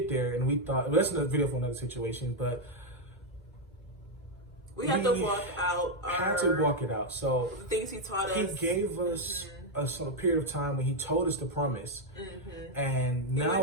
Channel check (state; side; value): normal; both; correlation 0.02